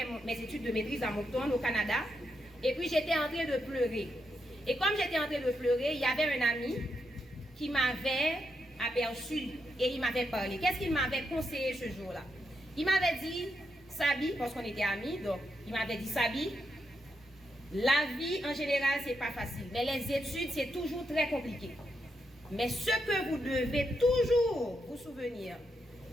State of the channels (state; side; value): normal; both; correlation 0.82